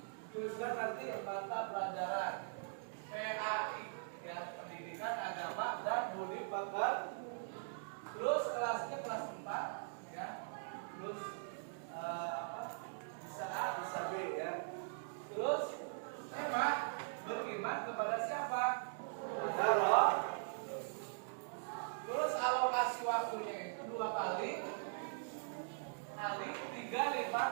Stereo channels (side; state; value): left; silent; digital silence